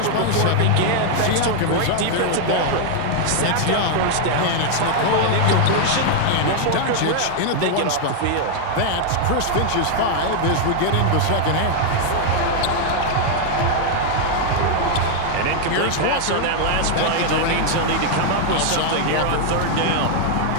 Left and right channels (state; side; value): different; both; correlation 0.00